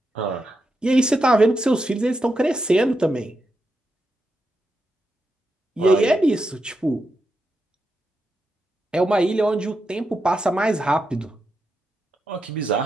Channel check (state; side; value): normal; both; correlation 0.86